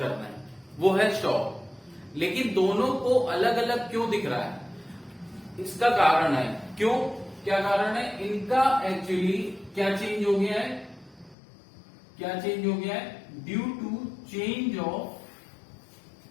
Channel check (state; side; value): drops out; right; at 11.4 s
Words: रहे हैं, वो है शॉप। लेकिन दोनों को अलग अलग क्यों दिख रहा है, इसका कारण है, क्यों, क्या कारण है, इनका एक्चुअली क्या चेंज हो गया है, due to change of